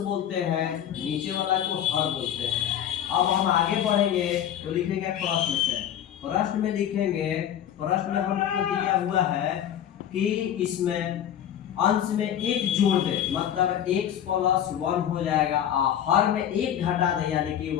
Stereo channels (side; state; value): right; quieter; 10.2 dB